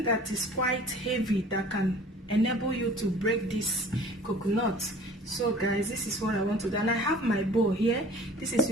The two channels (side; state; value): both; normal; correlation 0.47